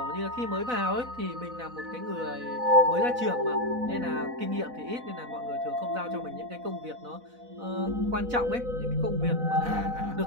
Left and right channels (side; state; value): left; late; 4.0 ms